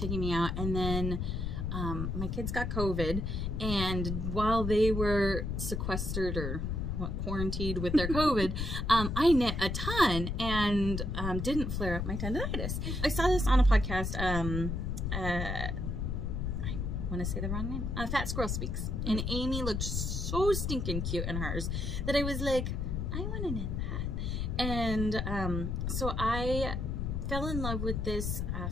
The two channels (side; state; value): left; noise; rumble, 2 dB below the sound